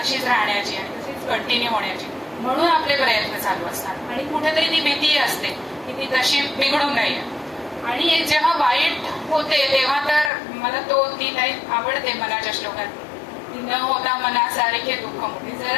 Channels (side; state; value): right; drops out; at 10.3 s